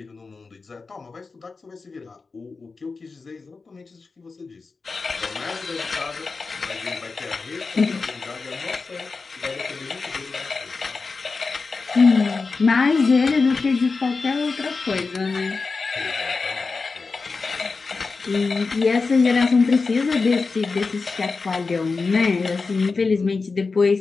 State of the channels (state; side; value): quieter; right; 4.3 dB